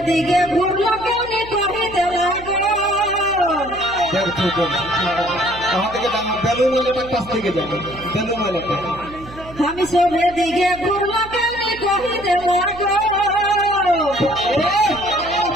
দিকে ঘুরলো কেনে কহে দেলা हम सोभे दिखे घूमो केने कही दे लागो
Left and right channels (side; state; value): right; noise; hum, 17 dB below the sound